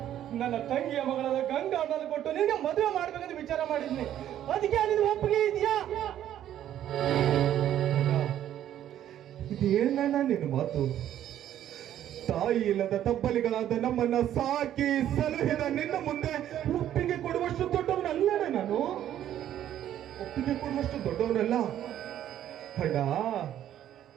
ನನ್ನ ತಂಗಿಯ ಮಗಳಾದ ಗಂಗಾ ಅನ್ನೋದು ಕೊಟ್ಟು ನಿನಗೆ ಮದುವೆ ಮಾಡ್ಬೇಕಂತ ವಿಚಾರ ಮಾಡಿದ್ನಿ. ಅದಕ್ಕೆ ನಿನ್ನ ಒಪ್ಪಿಗೆ ಇದೆಯಾ? ಇದೇನಣ್ಣ ನಿನ್ನ ಮಾತು? ತಾಯಿ ಇಲ್ಲದ ತಬ್ಬಲಿಗಳಾದ ನಮ್ಮನ್ನ ಸಾಕಿ ಸಲಹಿದ ನಿನ್ನ ಮುಂದೆ ಒಪ್ಪಿಗೆ ಕೊಡುವಷ್ಟು ದೊಡ್ಡವನಲ್ಲಣ್ಣ ನಾನು. ಒಪ್ಪಿಗೆ ಕೊಡುವಷ್ಟು ದೊಡ್ಡವನಲ್ಲ ಅಣ್ಣ.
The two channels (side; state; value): left; quieter; 11.4 dB